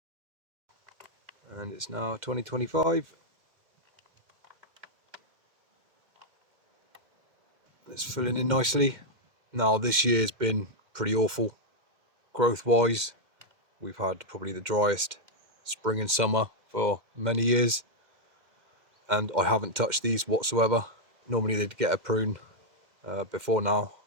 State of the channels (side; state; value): left; late; 2.1 ms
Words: and it's now 2025. It's filling in nicely. Now this year's been pretty awful growth wise. We've had probably the driest spring and summer for many years, and I haven't touched these whatsoever. Normally they'd get a prune before now,